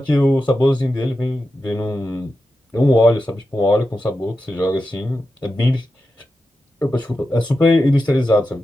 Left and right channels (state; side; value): normal; both; correlation 0.90